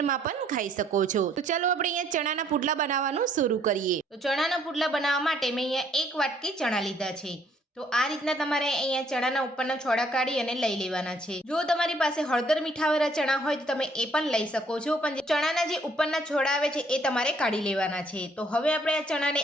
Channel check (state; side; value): normal; both; correlation 0.65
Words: પણ ખાઈ શકો છો। તો ચાલો આપણે અહીંયા ચણાના પુડલા બનાવવાનું શરૂ કરીએ। તો ચણાના પુડલા બનાવવા માટે મેં અહીંયા 1 વાટકી ચણા લીધા છે। તો આ રીતના તમારે અહીંયા ચણાના ઉપરના છોડા કાઢી અને લઈ લેવાના છે। જો તમારી પાસે હળદર મીઠાવાળા ચણા હોય તો તમે એ પણ લઈ શકો છો, પણ ચણાના જે ઉપરના છોડા આવે છે એ તમારે કાઢી લેવાના છે। તો હવે આપણે આ ચણાને